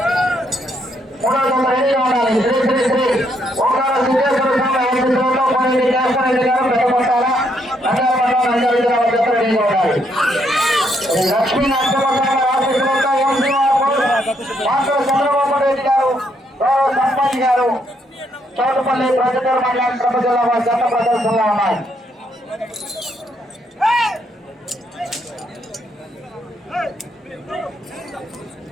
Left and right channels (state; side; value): normal; both; correlation 0.74